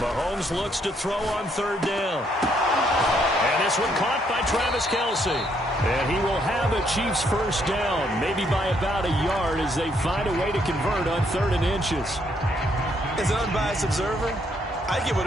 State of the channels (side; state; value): both; normal; correlation 0.71